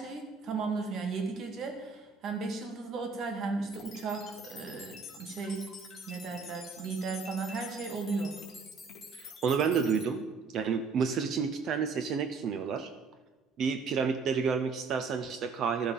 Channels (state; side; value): quieter; left; 4.9 dB